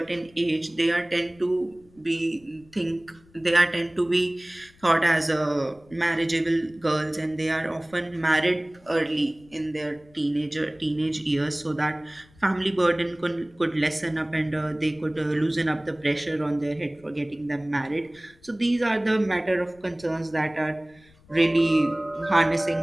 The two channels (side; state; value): left; noise; rumble, 28 dB below the sound